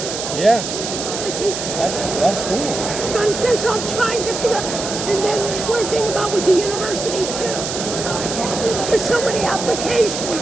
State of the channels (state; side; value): noise; right; hiss, 6 dB below the sound